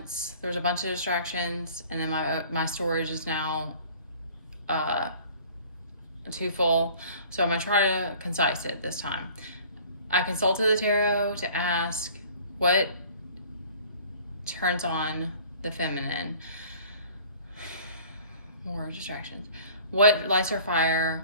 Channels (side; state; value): both; inverted; correlation -0.49